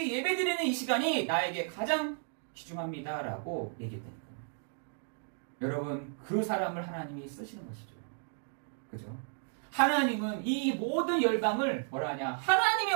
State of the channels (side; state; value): left; silent; 55 dB below the other